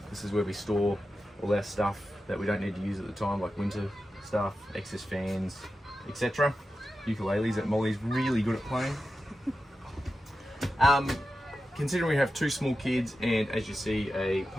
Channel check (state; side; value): normal; both; correlation 0.91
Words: This is where we store all our stuff that we don't need to use at the time, like winter stuff, excess fans, etc. Ukuleles that Molly's really good at playing. Considering we have two small kids and, as you see, a